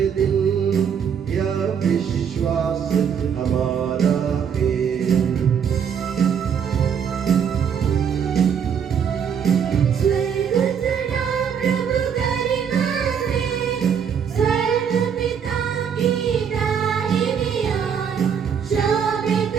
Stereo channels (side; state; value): left; quieter; 7.5 dB